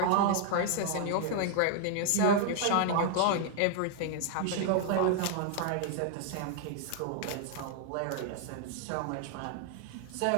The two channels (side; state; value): both; different; correlation 0.00